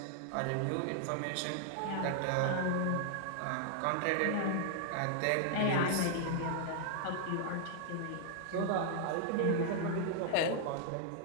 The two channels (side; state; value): both; different; correlation 0.00